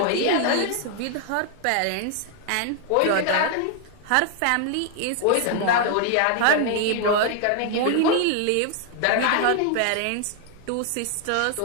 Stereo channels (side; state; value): both; different; correlation 0.00